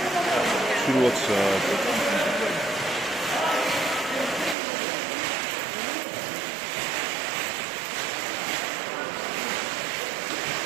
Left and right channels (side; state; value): left; drops out; at 4.5 s